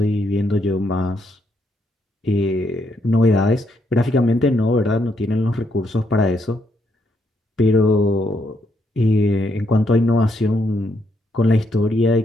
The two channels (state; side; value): normal; both; correlation 0.76